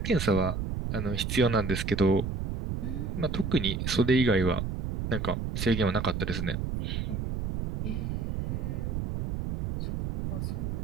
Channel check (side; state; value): right; noise; rumble, 3 dB below the sound